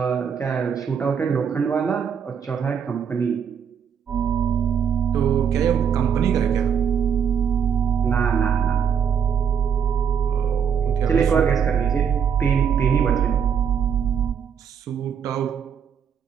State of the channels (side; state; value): left; quieter; 7.5 dB